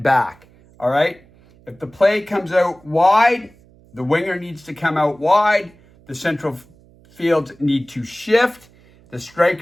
back. All right? If the play comes out wide, the winger needs to come out wide. The central fields need to shift. The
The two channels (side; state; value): right; noise; hum, 28 dB below the sound